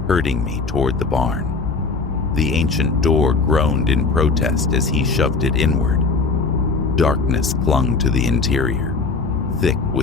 herding me toward the barn. The ancient door groaned in protest as he shoved it inward. Darkness clung to the interior, thick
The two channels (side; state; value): right; quieter; 4.2 dB